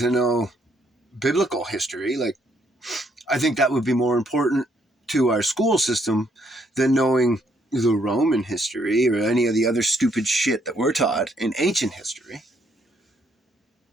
know biblical history. Like, I think that would be more important to our school system than knowing the Roman history or any of the other stupid shit that we're taught in ancient history.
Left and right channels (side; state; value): both; normal; correlation 0.71